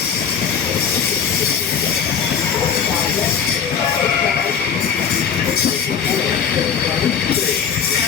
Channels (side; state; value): right; quieter; 7.3 dB